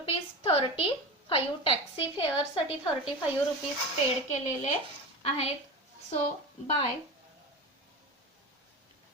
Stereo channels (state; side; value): normal; both; correlation 0.27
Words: Taxi fair साठी 35 रुपीज पेड केलेले आहेत, सो बाय